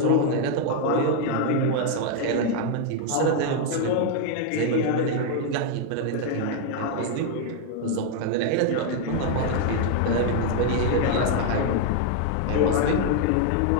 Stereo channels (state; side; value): different; both; correlation 0.00